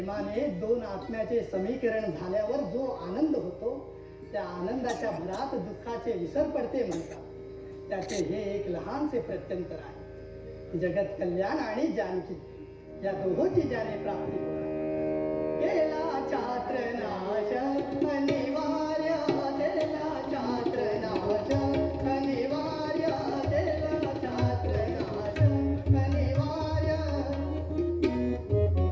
दोन आत्म्याचे समीकरण झाल्यावर जो आनंद होतो त्या आनंदाच्या भरात दुःखाचे विसर पडते म्हणतात. त्याचे हे एक लहानसे प्रत्यंतर आहे. जगत कल्याण आणि जानकी या दोहोंची ज्याने प्राप्ती केला छात्र नाश अनिवार्य, केला छात्र नाश अनिवार्य, केला छात्र नाश अनिवार्य.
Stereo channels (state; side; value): identical; both; correlation 1.00